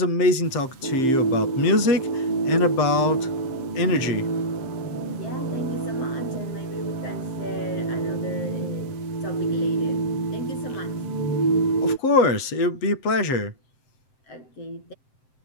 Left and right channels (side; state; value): right; late; 7.7 ms